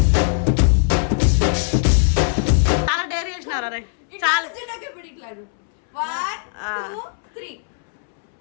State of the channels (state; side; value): silent; right; 66 dB below the other